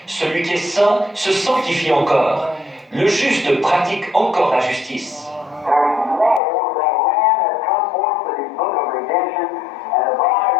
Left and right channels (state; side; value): drops out; right; at 6.4 s